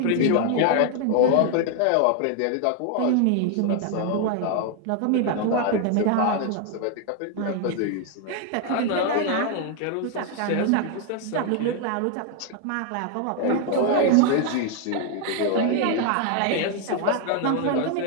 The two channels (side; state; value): both; different; correlation 0.00